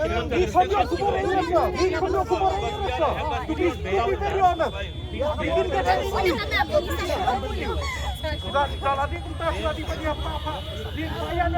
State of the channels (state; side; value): identical; both; correlation 1.00